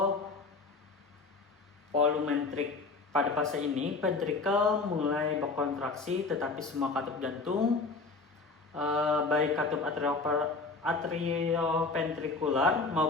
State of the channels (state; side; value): quieter; right; 4.0 dB